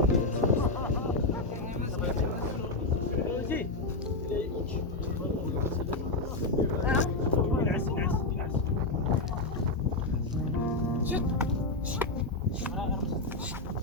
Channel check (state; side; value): quieter; right; 3.1 dB